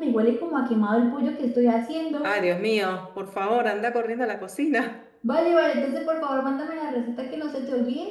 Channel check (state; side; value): identical; both; correlation 1.00